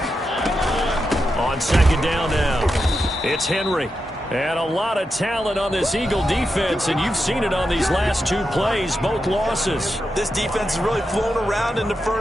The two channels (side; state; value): both; normal; correlation 0.87